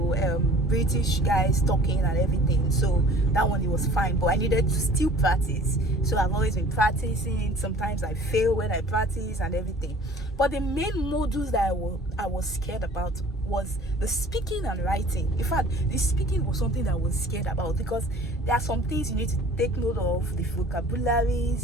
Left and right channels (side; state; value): both; normal; correlation 0.48